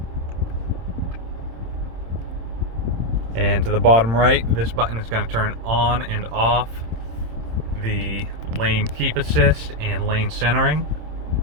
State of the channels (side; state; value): left; late; 26 ms